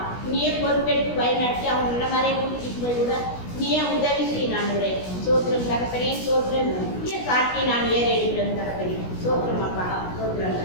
நீயே பொறுப்பெடுத்து வழிநடத்தி அவங்க நல்ல மாதிரியே கூட்டிகிட்டு போய் விட நீயே உதவி செய்ய ஆண்டவரே. சோத்திரம் தகப்பனே, சோத்திரம் சாட்டி நான் ஏற எடுக்கிறேன் தகப்பனே. சோத்திரம் அப்பா,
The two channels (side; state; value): right; late; 16 ms